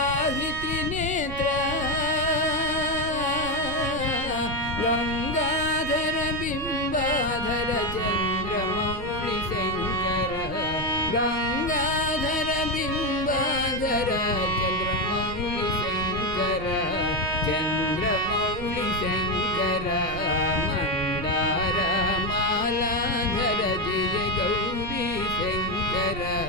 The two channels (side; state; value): right; noise; rumble, 10 dB below the sound